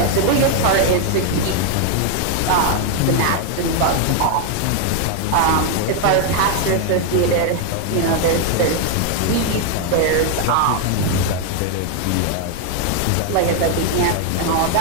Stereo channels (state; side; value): different; both; correlation 0.01